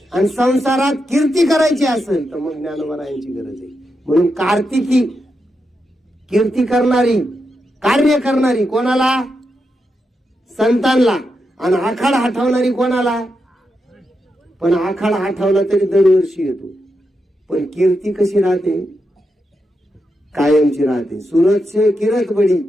आणि संसारात कीर्ती करायची असेल तर मग ज्ञानोबारायांची गरज आहे. म्हणून कार्तिकी कीर्ती करणारी, कार्य करणारी कोणाला? संतांना. आणि आखाड आठवणारी कोणाला? पण आखाड आठवला तरी दरवर्षी येतो, पण कीर्ती कशी राहते? कायमची राहते. सूरज से किरत बडी,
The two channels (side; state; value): both; normal; correlation 0.86